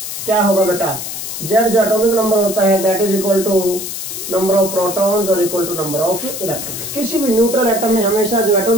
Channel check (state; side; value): noise; left; hiss, 7 dB below the sound